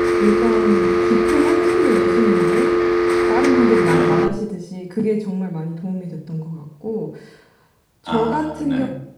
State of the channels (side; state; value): both; identical; correlation 1.00